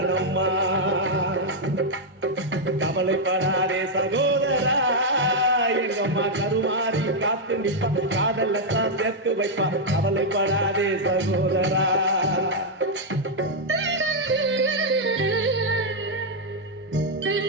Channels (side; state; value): both; normal; correlation -0.02